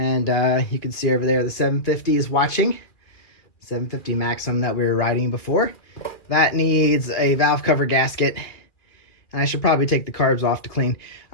you can see over there the 750 is watching. 750 Maxim that we were riding before. That needs a valve cover gasket, and I should probably take the carbs off to clean.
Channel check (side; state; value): right; late; 2.5 ms